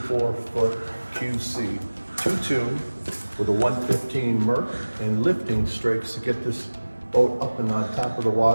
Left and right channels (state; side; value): inverted; both; correlation -1.00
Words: Pontoon with a 115 Merc and lifting strakes to get this boat up and on top of the